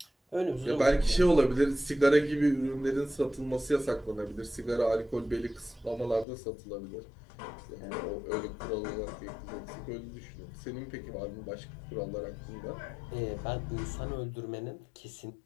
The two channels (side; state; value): right; drops out; at 6.2 s